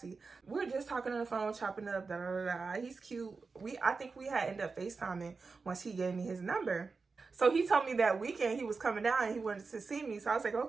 We were just talking on the phone, chopping up, da da da. He's cute. I think we had ended up FaceTiming once he gave me his number. So he told me that weekend he was coming down and he wanted to see me. So I was like,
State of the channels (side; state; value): left; quieter; 4.5 dB